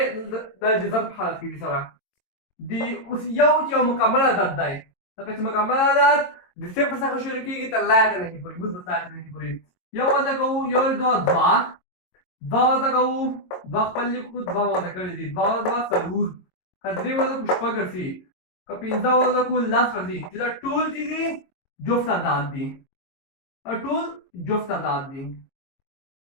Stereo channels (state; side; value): late; right; 22 ms